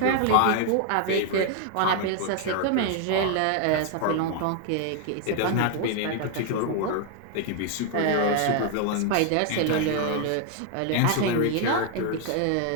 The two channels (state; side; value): different; both; correlation 0.00